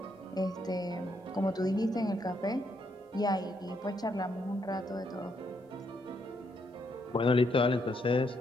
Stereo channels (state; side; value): normal; both; correlation 0.76